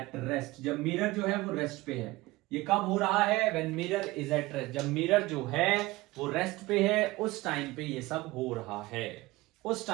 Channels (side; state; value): left; quieter; 20.0 dB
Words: rest, जब mirror जो है वो रेस्ट पे है। ये कब हो रहा है, when mirror is at rest, जब मिरर जो है वो रेस्ट पे है, उस टाइम पे ये सब हो रहा है, उस